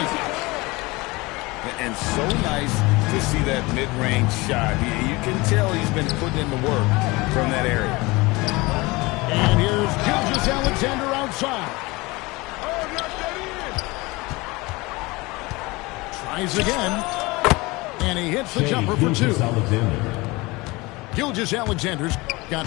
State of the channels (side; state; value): right; quieter; 23.2 dB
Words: And so nice to see that mid-range shot. You can tell he's been putting in the work from that area. And here's Gilgeous-Alexander outside. Tries again. And he hits the jumper for 2. Gilgeous-Alexander's got